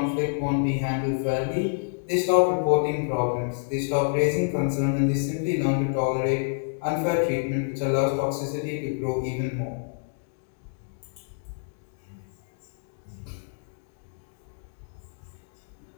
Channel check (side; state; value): right; silent; digital silence